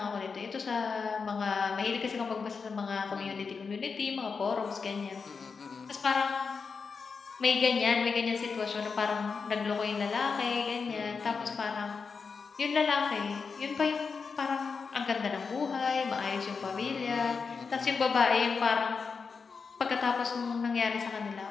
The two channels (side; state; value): right; quieter; 5.2 dB